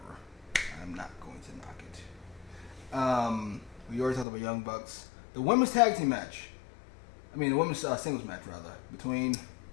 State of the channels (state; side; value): drops out; right; at 4.2 s